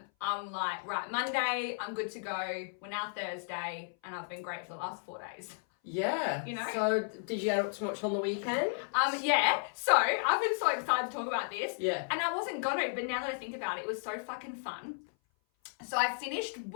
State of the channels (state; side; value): silent; right; 55 dB below the other